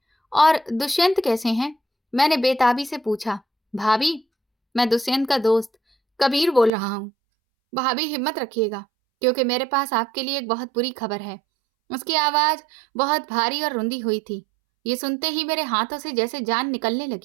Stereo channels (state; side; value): drops out; left; at 6.7 s